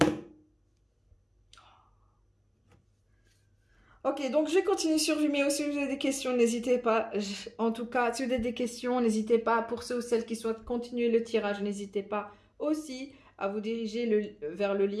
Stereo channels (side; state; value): both; identical; correlation 1.00